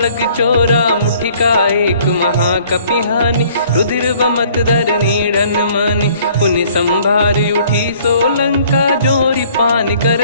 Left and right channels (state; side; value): inverted; both; correlation -0.57